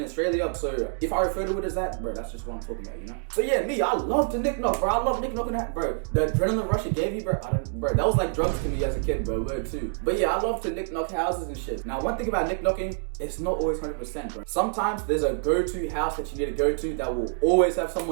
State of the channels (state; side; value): silent; left; 60 dB below the other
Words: Australia, so if I refer to it as that, bro, that's just what I'm talking about, So yeah, me, I love to nick-knock, bro. I love nick-knocking that, bro. The adrenaline rush it gave me, bro, that was like drugs to me as a kid, bro, word too. But yeah, I love to nick-knock houses and shit. Now, one thing about nick-knocking, it's not always 100%, bro. Sometimes there's a go-to house that you need to go to that will always have